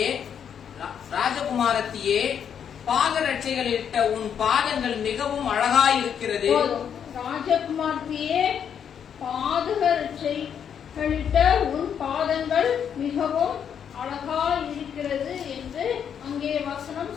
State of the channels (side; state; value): right; quieter; 8.1 dB